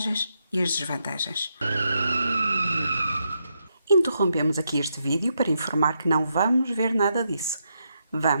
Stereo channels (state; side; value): inverted; both; correlation -0.81